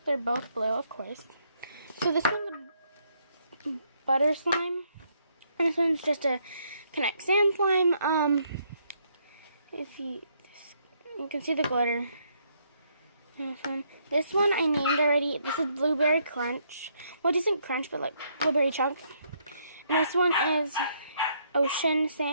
They're both blue, of course. So this one's a butter slime, and this one's just a Connect Sand slime. If you can see the glitter. This one I named already. This is Blueberry Crunch. Well, it isn't crunch, but like blueberry chunk. And this one is Ocean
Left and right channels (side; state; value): both; inverted; correlation -0.72